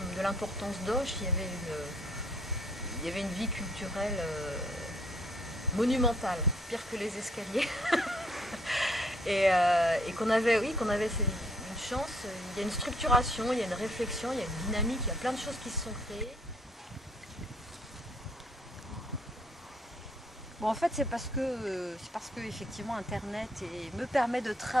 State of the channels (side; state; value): both; normal; correlation 0.65